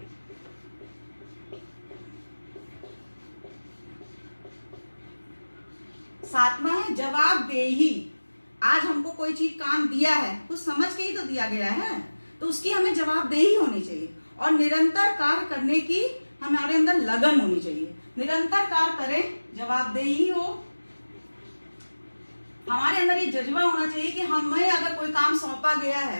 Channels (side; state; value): both; inverted; correlation -1.00